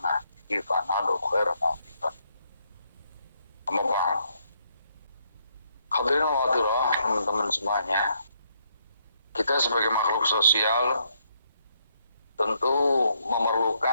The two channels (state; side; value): inverted; both; correlation -0.73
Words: nahdihi fanalu khairan afifan amma ba'd. Hadirin wadilah, teman-teman semuanya, kita sebagai makhluk sosial tentu